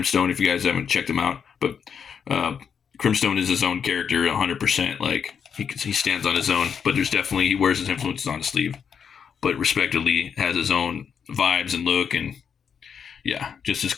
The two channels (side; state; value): right; quieter; 7.1 dB